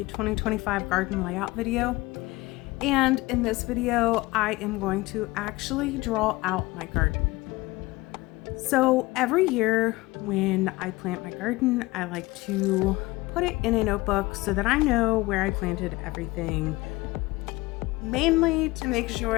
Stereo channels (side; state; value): right; quieter; 21.1 dB